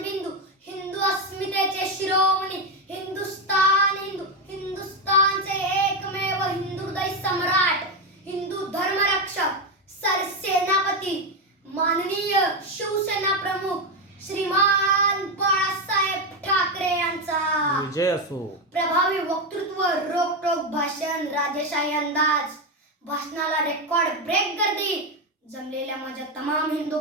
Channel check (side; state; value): both; normal; correlation 0.10